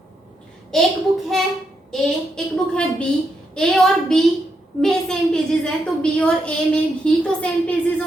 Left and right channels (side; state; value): both; normal; correlation 0.81